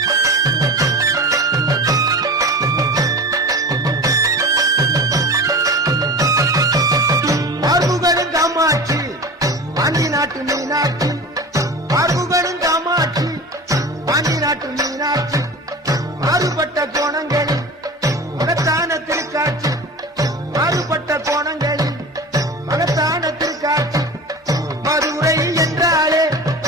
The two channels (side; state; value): both; normal; correlation 0.33